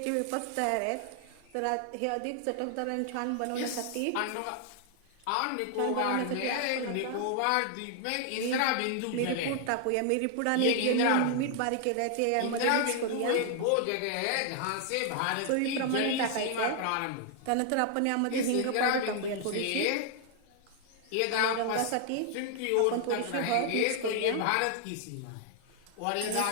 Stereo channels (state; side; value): different; both; correlation 0.00